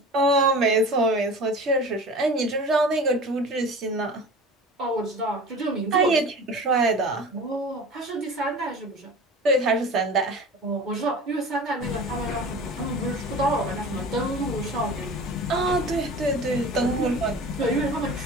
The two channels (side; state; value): both; normal; correlation 0.37